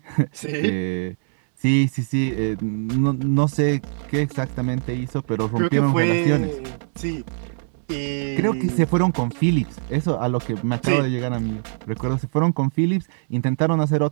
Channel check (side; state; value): left; silent; digital silence